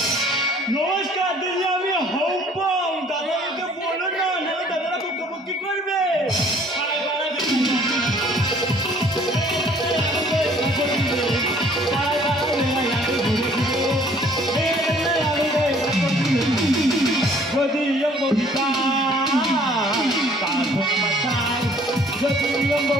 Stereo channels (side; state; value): both; normal; correlation 0.57